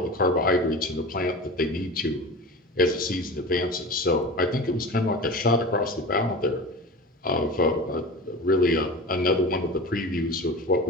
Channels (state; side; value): normal; both; correlation 0.33